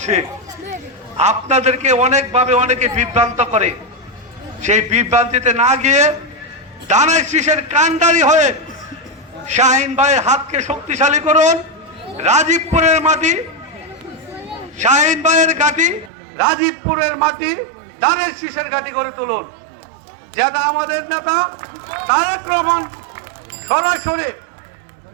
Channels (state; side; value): drops out; left; at 16.1 s